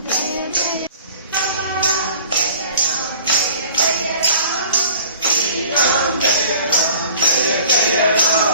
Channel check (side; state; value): both; inverted; correlation -0.47